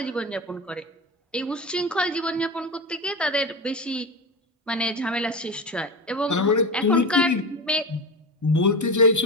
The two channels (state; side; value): normal; both; correlation 0.23